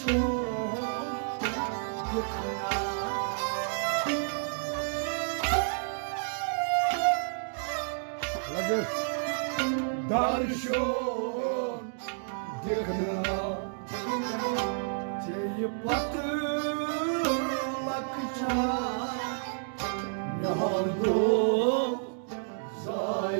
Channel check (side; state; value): left; silent; digital silence